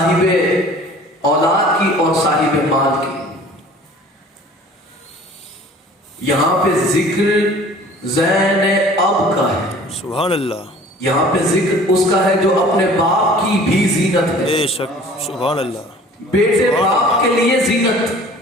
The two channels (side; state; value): both; normal; correlation 0.48